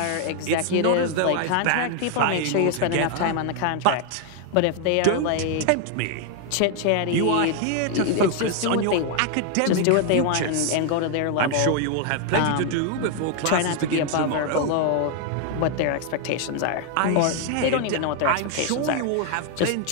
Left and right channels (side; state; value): both; different; correlation 0.00